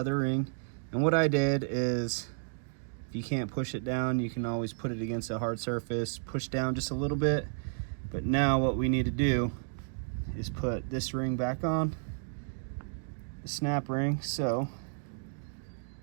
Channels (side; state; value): left; silent; digital silence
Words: ring. And what I did is, if you can't push it down, you can always put it against a hard surface, push down just a little bit. But now what we need to do is put this ring back on, the snap ring. So